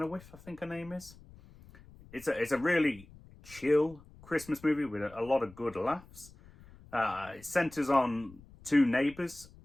I think her name is. It's a really chill Christmas movie with a lot of good laughs. It centres on two neighbours,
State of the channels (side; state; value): left; noise; rumble, 22 dB below the sound